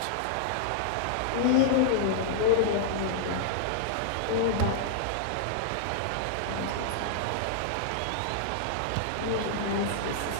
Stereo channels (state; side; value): different; both; correlation -0.01